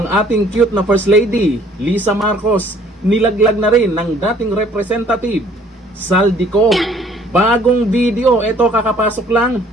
ating cute na First Lady, Lisa Marcos, nilaglag na rin ng dating representative, Saldico. Bagong video, ito kakapasok lang,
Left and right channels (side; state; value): both; normal; correlation 0.58